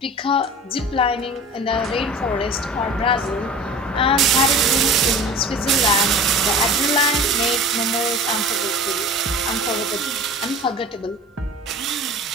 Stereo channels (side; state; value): both; normal; correlation 0.38